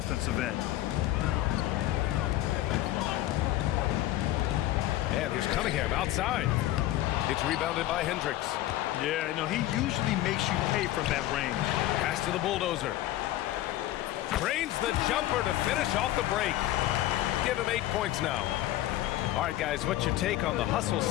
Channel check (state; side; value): quieter; right; 14.8 dB